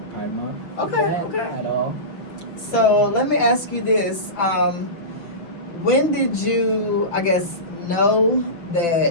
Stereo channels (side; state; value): right; late; 5.9 ms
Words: Pride Month. Okay. At all. So, let me ask you this. When did you, I guess, know